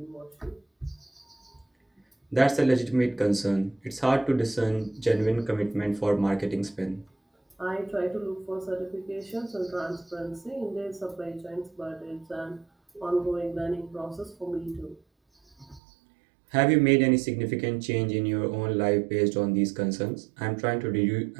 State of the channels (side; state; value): left; drops out; at 15.8 s